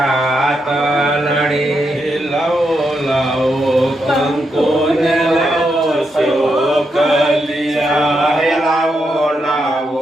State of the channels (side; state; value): both; normal; correlation 0.82